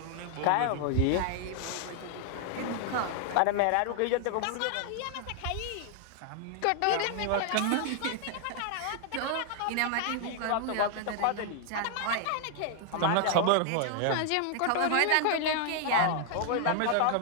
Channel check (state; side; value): different; both; correlation 0.00